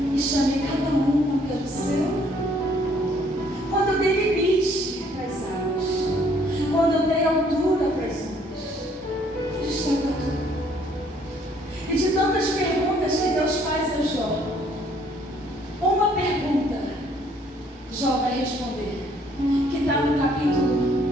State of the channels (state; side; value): normal; both; correlation 0.63